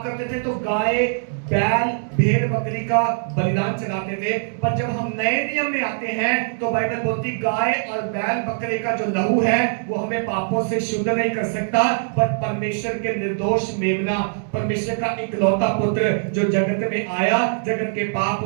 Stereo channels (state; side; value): silent; left; 64 dB below the other